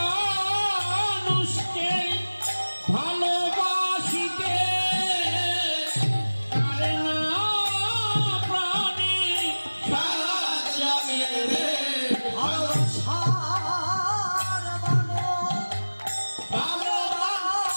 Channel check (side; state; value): both; inverted; correlation -1.00